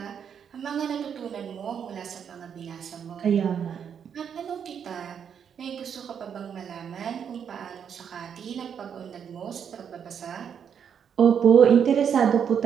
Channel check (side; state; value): left; quieter; 7.8 dB